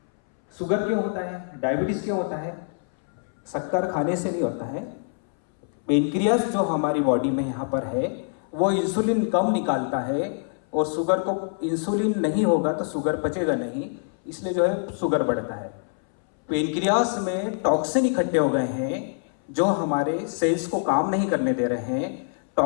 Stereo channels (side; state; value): right; silent; 62 dB below the other